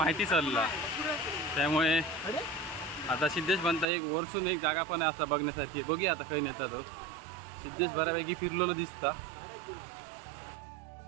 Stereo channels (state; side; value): drops out; left; at 3.9 s